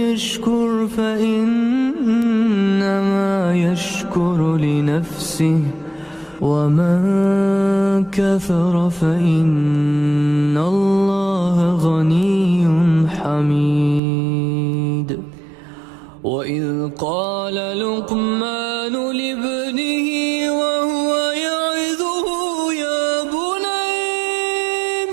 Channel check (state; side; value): drops out; left; at 14.0 s